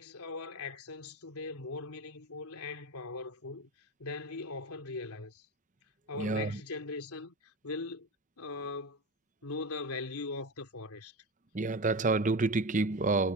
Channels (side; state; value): both; normal; correlation 0.23